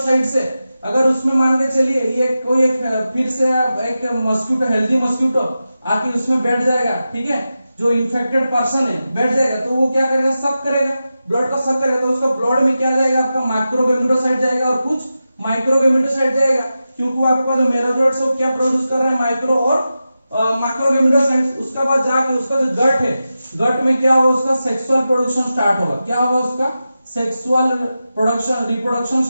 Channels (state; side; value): inverted; both; correlation -0.92